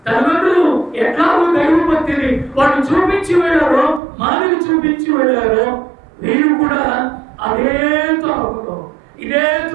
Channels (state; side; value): drops out; left; at 4.0 s